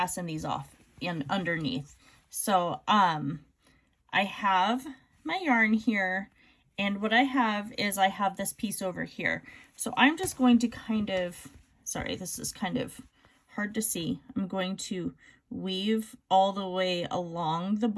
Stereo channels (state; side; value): identical; both; correlation 1.00